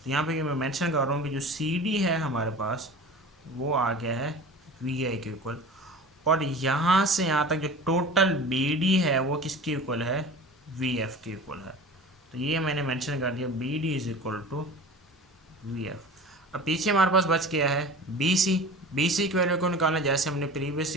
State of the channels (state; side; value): normal; both; correlation 0.37